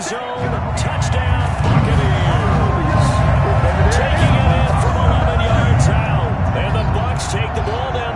zone. Touchdown, Buccaneers. Taking it in from 11 yards out. And the Bucs take the ball down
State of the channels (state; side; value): identical; both; correlation 1.00